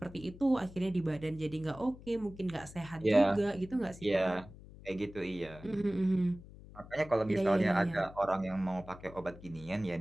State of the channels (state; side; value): noise; left; hum, 18 dB below the sound